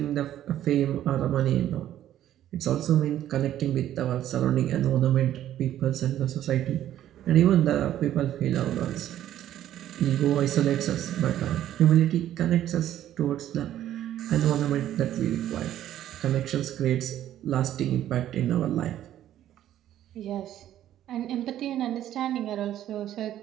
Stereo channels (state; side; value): quieter; left; 12.1 dB